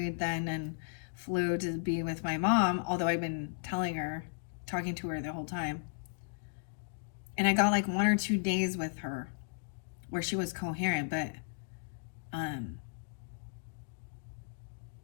then and flew to be with my mom, although I've been talking to her the whole time. And I got like 1 or 2 days with her where she was coherent, but um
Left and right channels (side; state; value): right; silent; digital silence